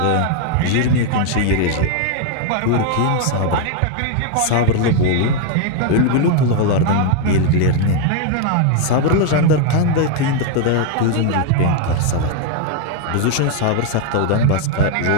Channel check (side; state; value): both; different; correlation 0.00